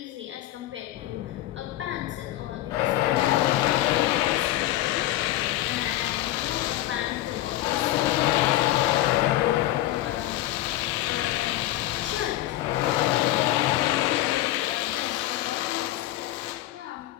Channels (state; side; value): quieter; right; 15.0 dB